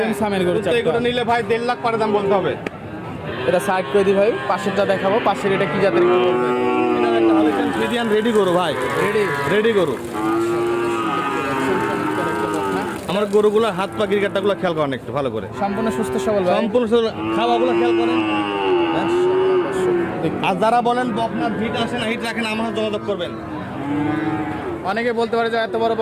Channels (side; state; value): both; identical; correlation 1.00